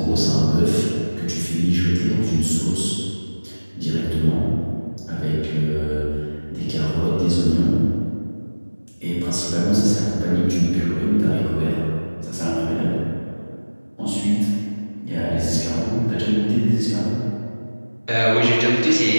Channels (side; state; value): both; inverted; correlation -1.00